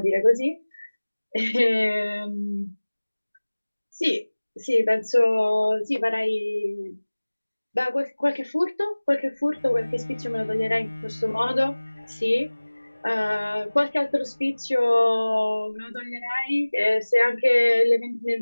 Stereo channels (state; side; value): inverted; both; correlation -1.00